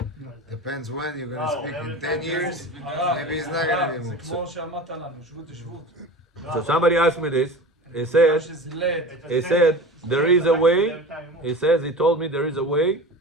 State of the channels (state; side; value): normal; both; correlation 0.34